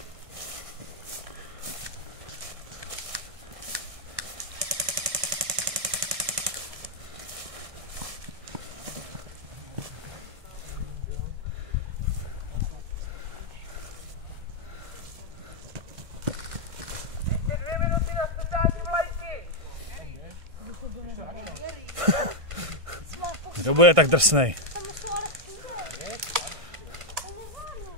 Kdo bude tak drsnej? Tam jsou ale všude. To nezvládnu.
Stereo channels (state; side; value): late; left; 1.5 ms